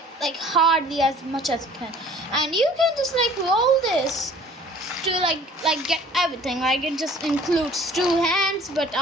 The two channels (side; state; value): both; normal; correlation 0.51